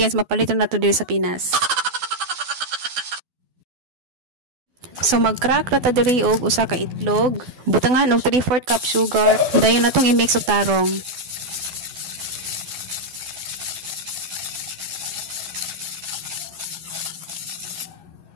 mapalitan na to diri sa Pinas. So mag-crack na ta diri og usa ka itlog, butangan og 3/4 cup sugar, dayon natong i-mix og tarong.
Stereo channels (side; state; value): left; late; 12 ms